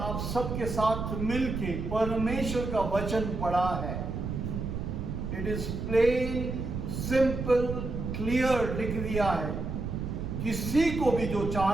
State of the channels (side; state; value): right; noise; rumble, 4 dB below the sound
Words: सबके साथ मिलके परमेश्वर का वचन पढ़ा है। It is plain, simple, clear लिख दिया है। किसी को भी जो